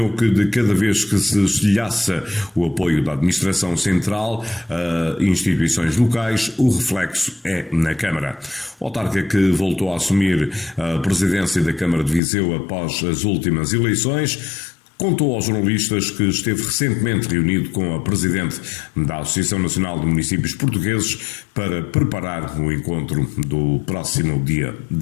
que de cada vez que se estilhaça o apoio da Administração Central a instituições locais, o reflexo é na Câmara. O autarca, que voltou a assumir a presidência da Câmara de Viseu após as últimas eleições, contou aos jornalistas que esteve recentemente reunido com a presidente da Associação Nacional de Municípios Portugueses para preparar o encontro do próximo dia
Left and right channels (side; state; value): right; drops out; at 12.2 s